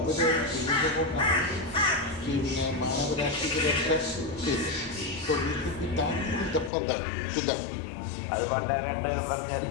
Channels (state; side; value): drops out; right; at 6.7 s